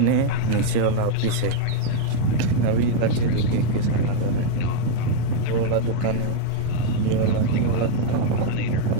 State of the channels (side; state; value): both; different; correlation 0.00